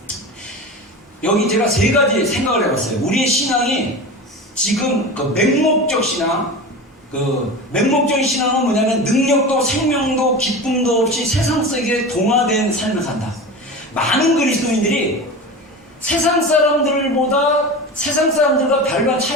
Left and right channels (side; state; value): both; normal; correlation 0.29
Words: 여기 제가 세 가지 생각을 해봤어요. 우리의 신앙이 지금 그 맹목적 신앙, 그 맹목적인 신앙은 뭐냐면 능력도 생명도 기쁨도 없이 세상 속에 동화된 삶을 산다. 많은 그리스도인들이 세상 사람들과 별반